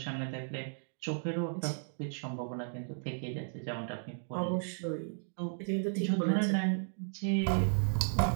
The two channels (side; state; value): left; silent; digital silence